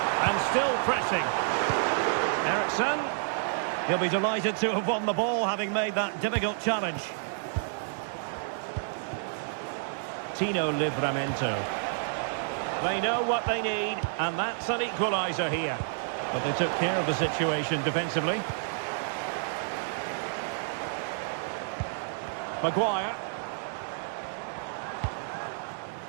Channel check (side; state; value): left; silent; digital silence